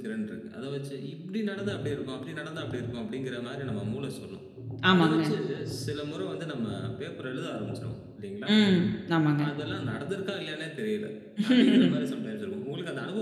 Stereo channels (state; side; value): identical; both; correlation 1.00